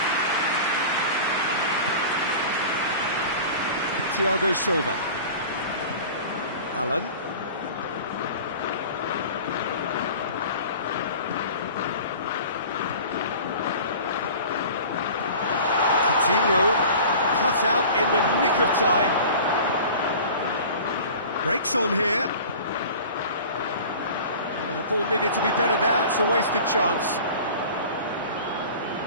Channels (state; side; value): inverted; both; correlation -0.40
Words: Thiago Silva. Allen. Coutinho, cut out in the nick of time. Breaks on here. The ball needed to be better there, it's a wasted chance.